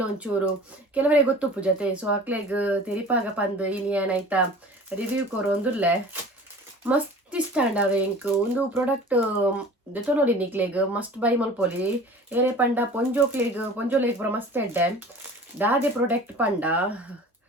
ಒಂಚೂರು ಕೆಲವರೇ ಗೊತ್ತುಪ್ಪು ಜೊತೆ. ಸೊ ಅಕ್ಲೆಗ್ ತೆರಿಪಾಗ ಪಂದ್ ಇನಿ ಏನಾಯ್ತಾ ರಿವ್ಯೂ ಕೊರೊಂದುಲ್ಲೆ ಮಸ್ತ್ ಇಷ್ಟಾಂಡ ಅವೆ ಎಂಕ್ ಒಂದು ಪ್ರಾಡಕ್ಟ್ ದೆತೊನೊಲಿ ನಿಕ್ಲೆಗ್ ಮಸ್ಟ್ ಬೈ ಮಲ್ಪೊಲಿ. ಏರೆ ಪಂಡ ಪೊಂಜೋಲೆಗ್ ಪೂರ ಮಸ್ತ್ ಎಡ್ಡೆ ದಾದೆ ಪ್ರಾಡಕ್ಟ್ ಪಂಡ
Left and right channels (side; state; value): both; normal; correlation 0.42